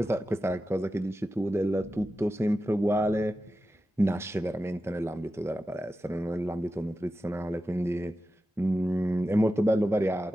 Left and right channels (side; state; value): both; normal; correlation 0.92